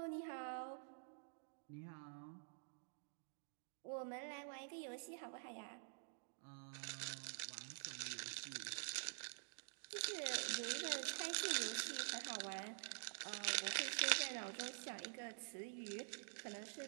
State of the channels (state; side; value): silent; left; digital silence